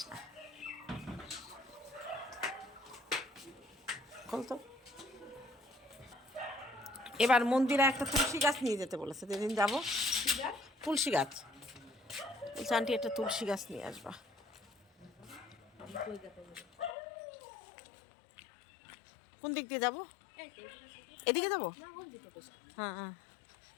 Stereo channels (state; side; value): drops out; right; at 16.9 s